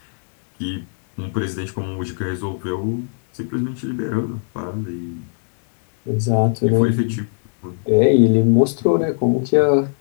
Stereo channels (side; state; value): right; silent; digital silence